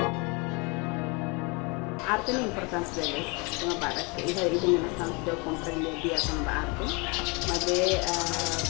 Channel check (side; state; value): right; quieter; 29.9 dB